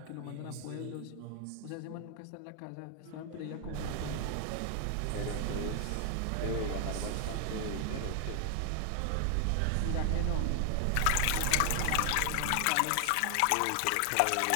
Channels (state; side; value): different; both; correlation 0.00